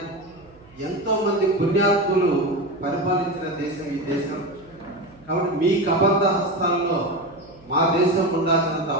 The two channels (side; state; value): right; noise; hum, 26 dB below the sound